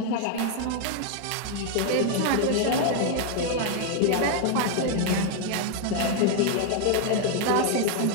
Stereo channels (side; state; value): both; different; correlation 0.00